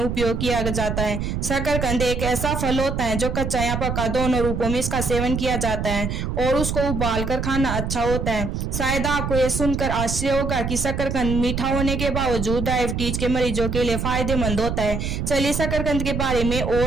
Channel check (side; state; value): right; noise; rumble, 3 dB below the sound